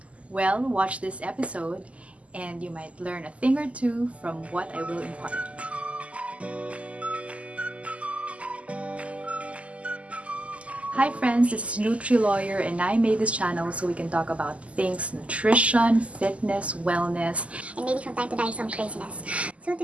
Well, watch this episode and you might learn a thing or two from what I will impart. Hi friends, this is Nutri Lawyer and I made this channel so we can talk about things nutrition, fitness, wellness, and maybe from time to time some craziness. So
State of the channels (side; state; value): left; late; 0.064 ms